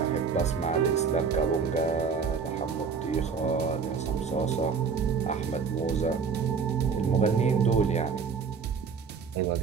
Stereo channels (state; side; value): quieter; left; 5.7 dB